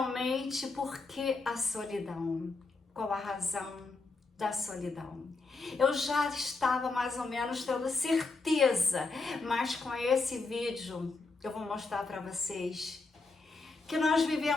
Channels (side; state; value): right; quieter; 3.8 dB